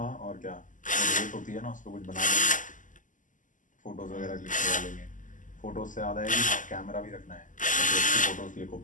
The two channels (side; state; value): right; late; 0.37 ms